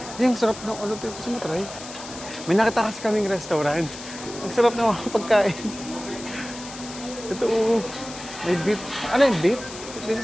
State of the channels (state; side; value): noise; left; hiss, 13 dB below the sound